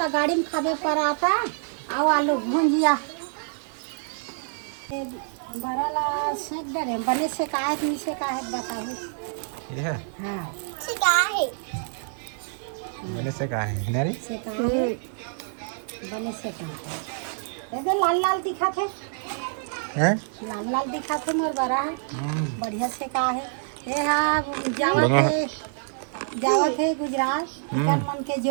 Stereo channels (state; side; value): silent; left; digital silence